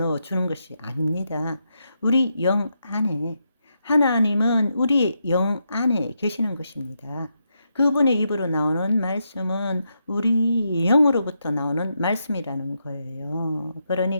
주는 것이 아닙니다. 우리 영 안에, 하나님은 우리 영 안에 계시는 것입니다. 그분의 입으로 나오는 말씀은 우리 영으로부터 나오는 말씀이라는 거예요.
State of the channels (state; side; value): inverted; both; correlation -0.83